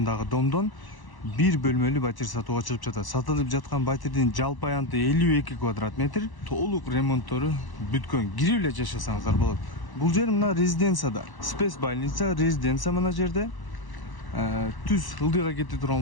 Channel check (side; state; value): right; late; 1.0 ms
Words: домдон бир бөлмөлүү батир сатууга чыгып жатат. Сатылып жаткан батирдин жалпы аянты 52 квадрат метр. Толук ремонттору бүткөн. Кирип эле жашасаңыздар болот. Бул жер мына резиденцияда. Спец больница, резиденция мына жерде. Түз ылдыйга кете